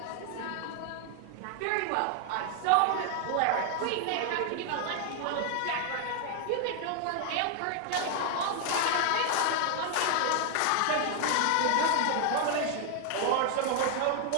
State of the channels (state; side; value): different; both; correlation 0.00